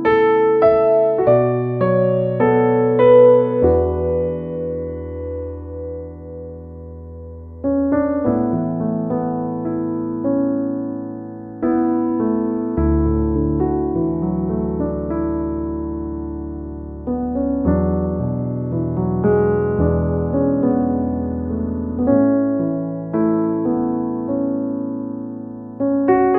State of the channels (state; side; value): identical; both; correlation 1.00